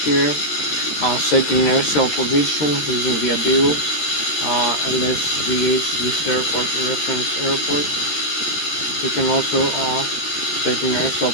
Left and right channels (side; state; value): right; late; 13 ms